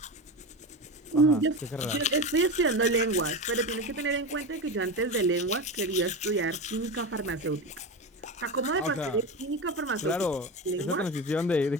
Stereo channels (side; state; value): both; normal; correlation 0.22